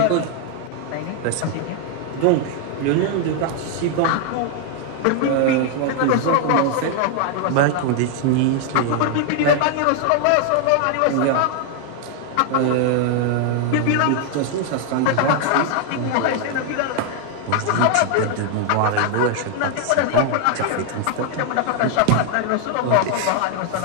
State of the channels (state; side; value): different; both; correlation 0.00